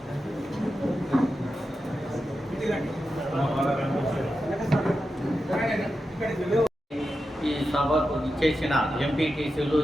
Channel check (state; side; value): normal; both; correlation 0.90